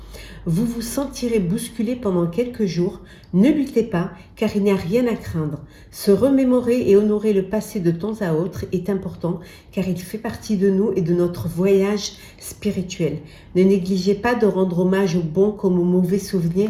Vous vous sentirez bousculé pendant quelques jours. Ne luttez pas, car il n'y a rien à craindre. Se remémorer et honorer le passé de temps à autre est important, car il fait partie de nous et de notre voyage spirituel. Ne négligez pas de rendre hommage aux bons comme aux mauvais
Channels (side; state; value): both; identical; correlation 1.00